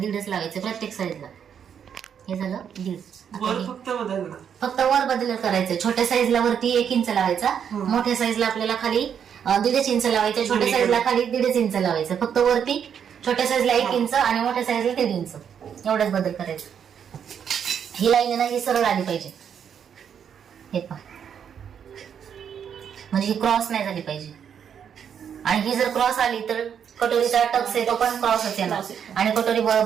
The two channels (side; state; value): left; quieter; 8.0 dB